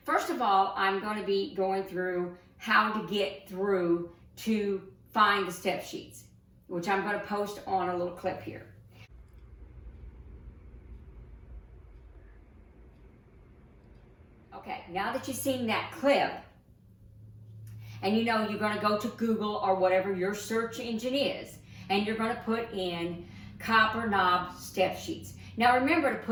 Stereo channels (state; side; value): identical; both; correlation 1.00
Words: First of all, I'm going to be going through how to get through to find the step sheets, which I'm going to post on a little clip here. Okay, now that you've seen that clip, and you know you're going to go to Google or whatever your search engine is, and you're going to put in copper knob step sheets. Now remember to